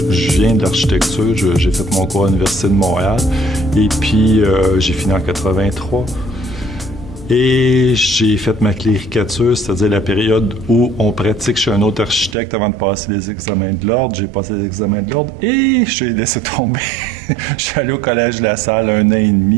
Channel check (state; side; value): drops out; left; at 12.4 s